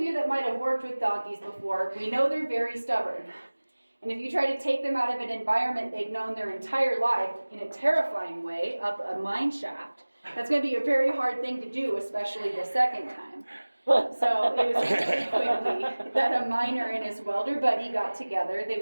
you that might have worked with donkeys before, we know they're very stubborn. And if you try to take them out of an environment they've known their entire life in a terrifying way, up a mine shaft, that's going to be a very hard thing to do, especially the second time. So it was really quickly that a miner and his welder buddy got together.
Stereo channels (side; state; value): both; inverted; correlation -1.00